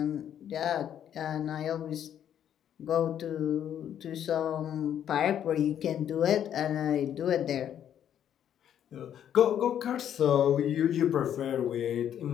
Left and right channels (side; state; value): right; quieter; 9.9 dB